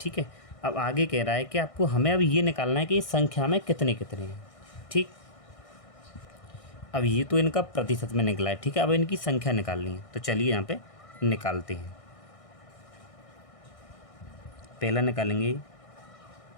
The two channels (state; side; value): late; right; 1.6 ms